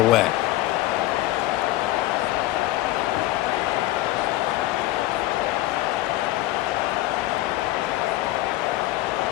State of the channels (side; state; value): right; quieter; 16.6 dB